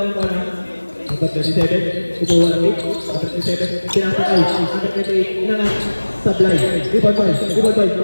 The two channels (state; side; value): inverted; both; correlation -1.00